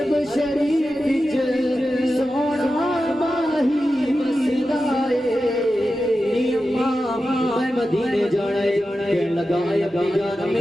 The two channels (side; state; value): both; normal; correlation 0.92